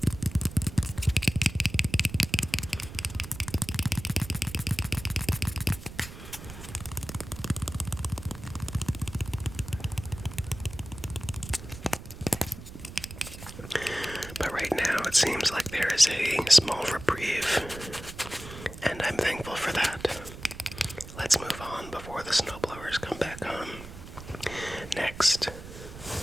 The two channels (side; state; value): right; noise; rumble, 13 dB below the sound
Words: But right now it seems like there is a small reprieve, and I'm thankful for that. Let's move on before the snowblowers come back on. Next,